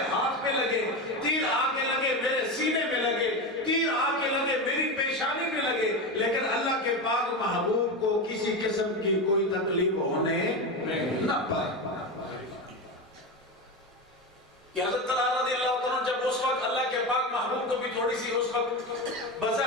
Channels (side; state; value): both; normal; correlation 0.19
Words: ہاتھ پہ لگے، تیر آ کے لگے میرے سینے میں لگے، تیر آ کے لگے میری پیشانی میں لگے، لیکن اللہ کے پاک محبوب کو کسی قسم کی کوئی تکلیف ہونے نہ پائے. کہ حضرت طلحہ رضی اللہ عنہ جب اس وقت اللہ کے پاک محبوب کو بھی تھوڑی سی اس وقت